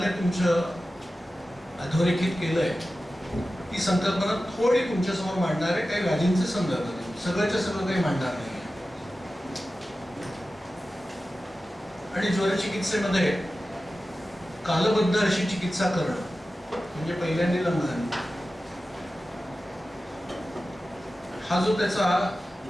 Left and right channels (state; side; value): normal; both; correlation 0.94